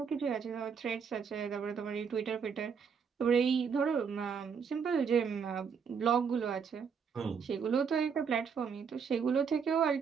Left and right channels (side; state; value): left; quieter; 6.4 dB